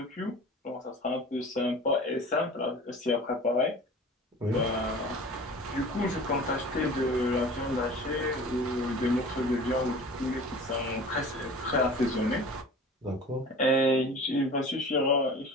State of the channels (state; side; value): normal; both; correlation 0.40